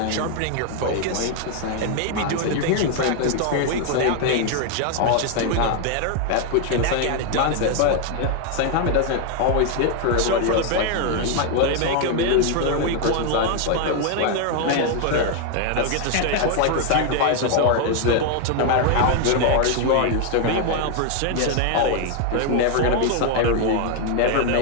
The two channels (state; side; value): different; both; correlation 0.00